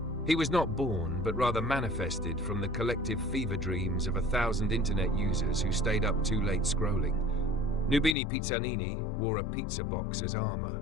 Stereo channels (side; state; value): right; drops out; at 8.2 s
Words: He was not born, but rather manifested from the collective fever dreams of 1,000 internet users who stayed up too late scrolling. Nubini Pizzanini wore a pizza box as armor